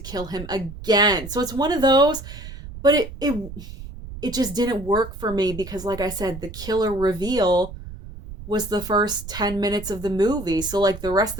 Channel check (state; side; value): noise; right; rumble, 12 dB below the sound